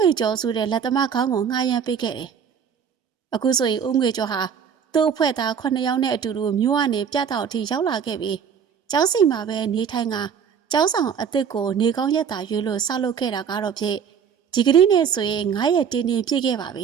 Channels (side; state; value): left; quieter; 7.4 dB